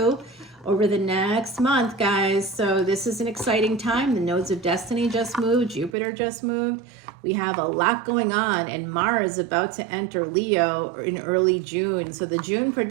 over the next month, guys. So this is an exciting time. The nodes of destiny just moved. Jupiter just moved. We have a lot going on, and Mars is about to enter Leo in early June. So the June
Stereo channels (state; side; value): drops out; left; at 6.0 s